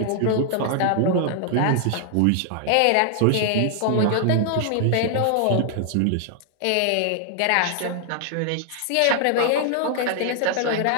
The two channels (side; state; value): both; different; correlation -0.01